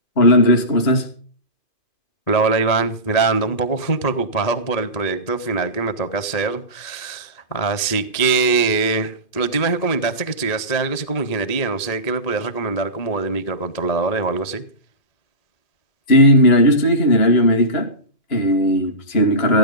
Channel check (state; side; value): late; right; 1.9 ms